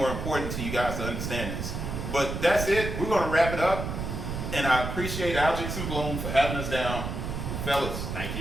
important to you guys to understand this. But that's it. We're going to wrap it up. And I appreciate Algix and Bloom for having us down. Fellas, Thank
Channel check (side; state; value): right; noise; rumble, 4 dB below the sound